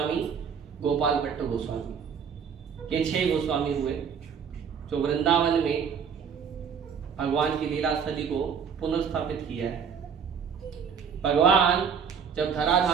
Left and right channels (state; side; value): quieter; left; 6.9 dB